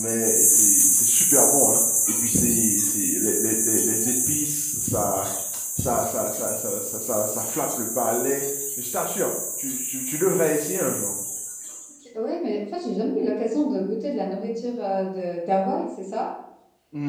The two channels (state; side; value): identical; both; correlation 1.00